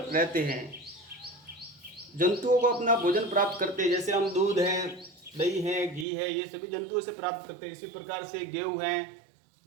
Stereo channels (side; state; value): left; drops out; at 6.1 s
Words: हैं, जंतुओं को अपना भोजन प्राप्त करते हैं। जैसे हम दूध है, दही है, घी है, ये सभी जंतुओं से प्राप्त करते हैं। इसी प्रकार से गेहूं है,